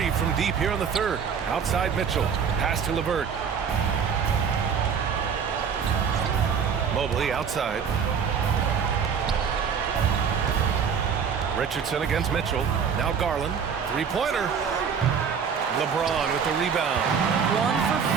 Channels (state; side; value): quieter; left; 6.8 dB